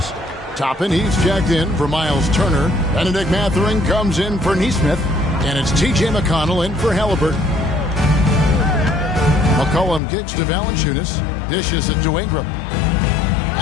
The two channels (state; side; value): drops out; right; at 10.0 s